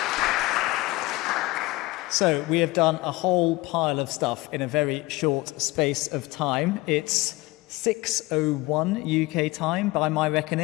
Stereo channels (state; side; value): quieter; right; 20.8 dB